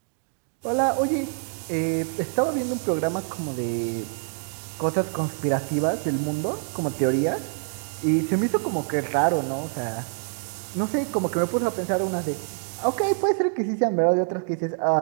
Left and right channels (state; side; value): silent; left; 61 dB below the other